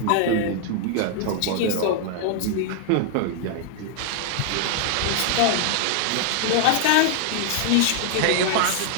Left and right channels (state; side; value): different; both; correlation 0.00